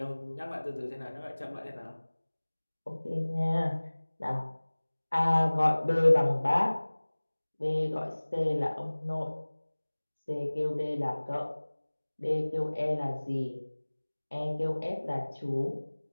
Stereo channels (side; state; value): both; inverted; correlation -1.00